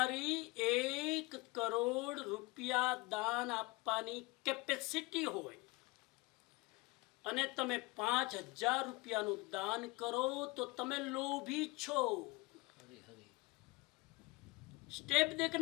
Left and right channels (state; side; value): quieter; right; 23.7 dB